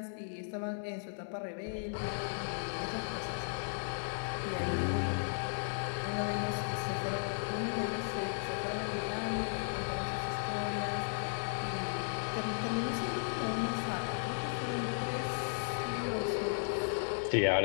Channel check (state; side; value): silent; right; digital silence